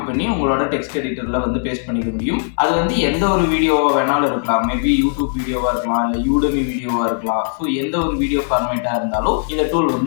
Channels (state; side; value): silent; right; 64 dB below the other